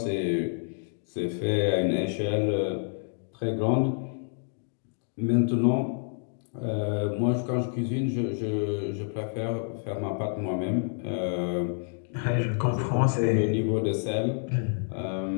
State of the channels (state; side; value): silent; right; digital silence